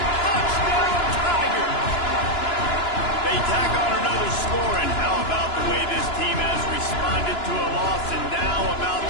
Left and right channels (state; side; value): late; right; 2.9 ms